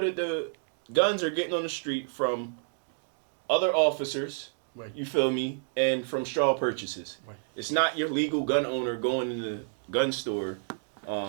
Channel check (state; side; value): silent; left; digital silence